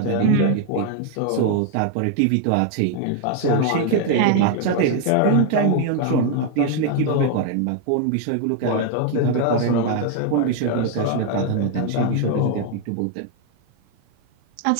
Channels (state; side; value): different; both; correlation 0.00